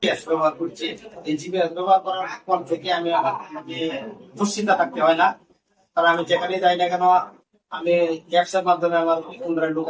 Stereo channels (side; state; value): both; identical; correlation 1.00